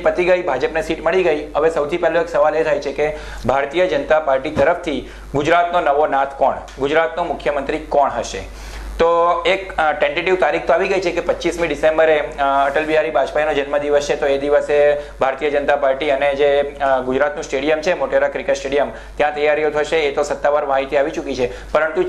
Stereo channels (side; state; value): both; identical; correlation 1.00